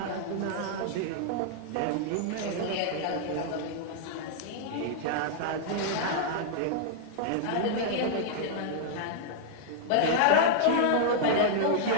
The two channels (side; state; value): both; different; correlation -0.01